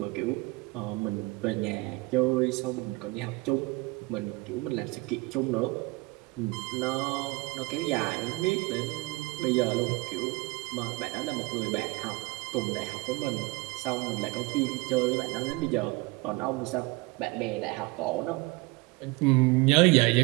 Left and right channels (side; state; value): left; quieter; 23.7 dB